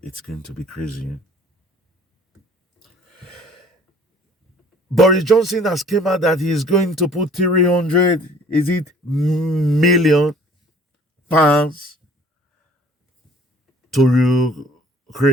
it's going to be crazy. Boris Johnson has came out that he's going to put 300, is it million pounds to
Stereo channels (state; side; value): normal; both; correlation 0.53